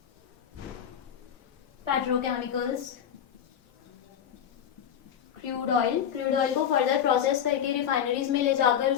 petrochemicals, crude oil को फर्दर प्रोसेस करके रिफाइनरीज में ले जाकर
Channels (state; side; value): quieter; right; 9.0 dB